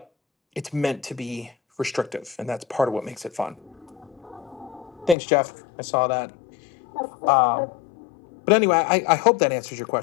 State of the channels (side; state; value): right; drops out; at 5.2 s